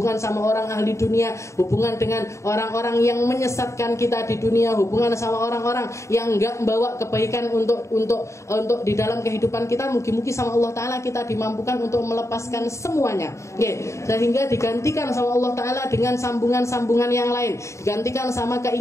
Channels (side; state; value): right; late; 0.14 ms